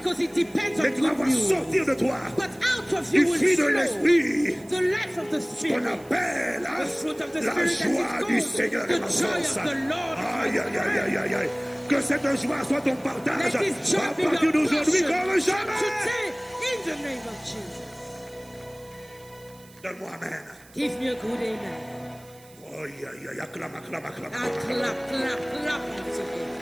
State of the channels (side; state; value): right; noise; hiss, 25 dB below the sound